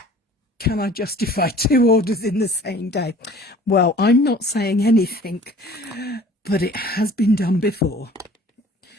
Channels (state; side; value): normal; both; correlation 0.49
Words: Can I justify 2 orders in the same day? Well, I'm not saying anything, but it has been done before.